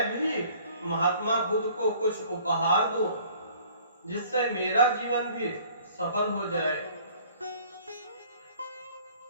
भी महात्मा बुद्ध को कुछ उपहार दूं जिससे मेरा जीवन भी सफल हो जाए,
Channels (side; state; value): both; inverted; correlation -0.54